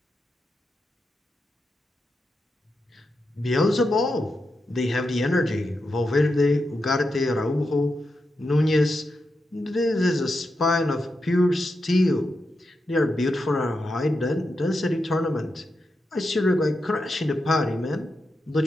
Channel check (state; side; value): normal; both; correlation 0.87